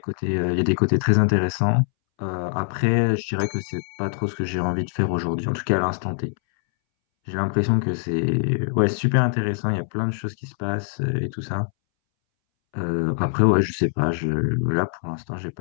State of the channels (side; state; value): right; silent; 62 dB below the other